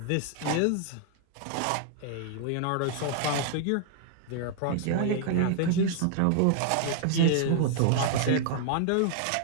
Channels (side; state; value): both; different; correlation -0.01